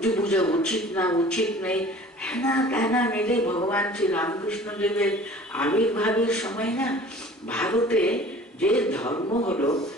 পূজা উচিত না উচিত নেই, হ্যাঁ কেনা মিলে ভগবান শ্রী রামকৃষ্ণ দেবের আবির্ভাবের সময় না ভারতে যে ধর্ম হলো,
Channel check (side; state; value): both; normal; correlation 0.46